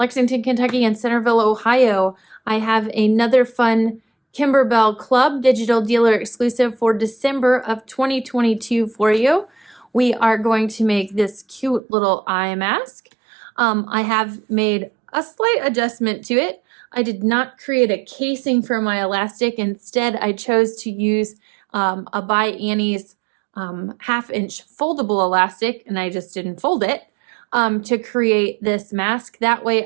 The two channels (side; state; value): left; drops out; at 11.8 s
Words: Kentucky and Centerville, Ohio. I have another fun Kimberbell Klub Digital Dealer Exclusive for December of 2022 for you. We are going to make this cute little eye mask. I have made a slight adjustment to it. I did not create a casing for my elastic. Instead, I chose to use a by Annie's half-inch foldable elastic, and I just didn't fold it to create this mask. That way